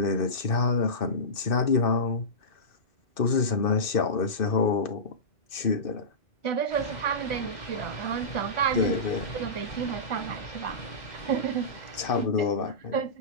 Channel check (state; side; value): late; right; 2.6 ms